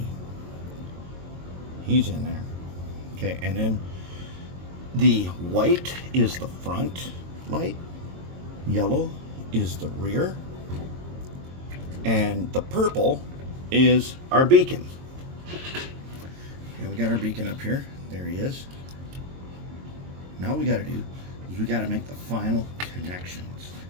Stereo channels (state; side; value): late; left; 22 ms